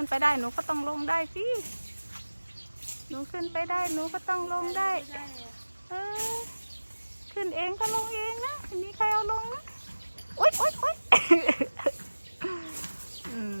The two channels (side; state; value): both; inverted; correlation -1.00